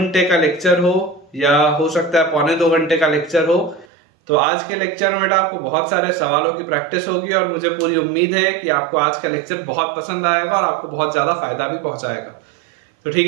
का लेक्चर हो या हो सकता है पौने 2 घंटे का लेक्चर हो। तो आज के लेक्चर में बेटा आपको बहुत सारे सवालों की प्रैक्टिस होगी और मुझे पूरी उम्मीद है कि आपको आज का लेक्चर बहुत पसंद आएगा और आपको बहुत ज्यादा फायदा भी पहुंचाएगा। तो ठीक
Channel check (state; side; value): drops out; left; at 3.9 s